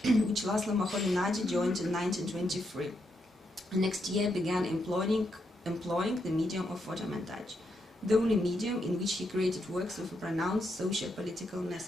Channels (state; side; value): normal; both; correlation 0.80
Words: which Laszlo Moholy-Nagy joined in 1923. The next year began employing the medium of photomontage, the only medium in which he created works with a pronounced socio-political